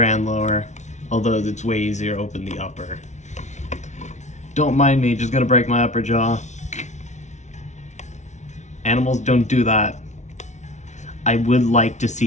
and lower, although it's way easier to open the upper. Don't mind me, just gonna break my upper jaw. Animals don't do that. I would like to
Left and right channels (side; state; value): right; late; 0.34 ms